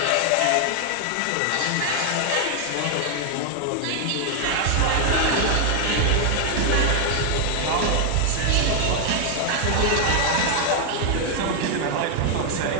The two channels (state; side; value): different; both; correlation 0.00